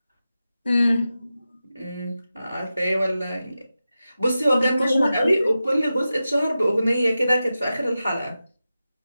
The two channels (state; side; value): inverted; both; correlation -0.92